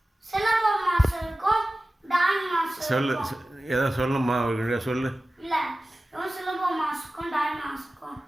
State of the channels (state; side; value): normal; both; correlation 0.96